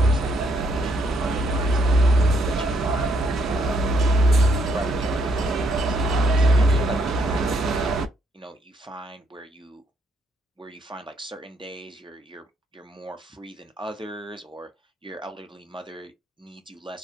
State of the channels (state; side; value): normal; both; correlation 0.71